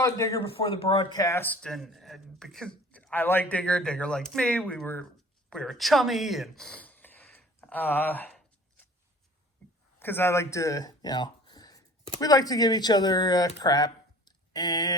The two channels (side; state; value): both; normal; correlation 0.47